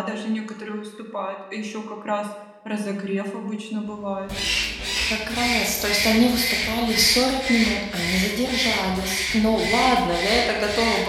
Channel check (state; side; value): identical; both; correlation 1.00